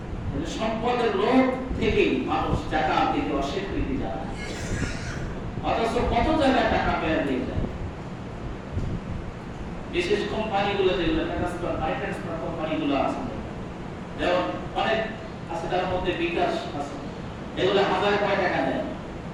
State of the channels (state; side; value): identical; both; correlation 1.00